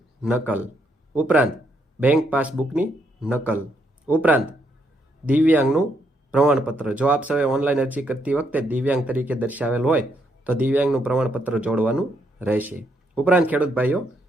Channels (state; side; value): normal; both; correlation 0.75